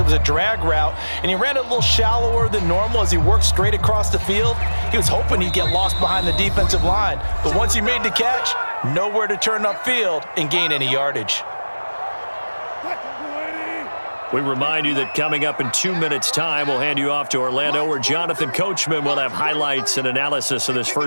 was a drag route, and he ran it a little shallower than normal as he worked straight across the field. He was hoping he'd get lost behind the defensive line, but once he made the catch, nowhere to turn upfield and gain any yardage. We remind you that coming up in 2 minutes' time, we'll hand you off to Orlando, where Jonathan Coachman will have highlights and analysis of this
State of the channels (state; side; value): inverted; both; correlation -1.00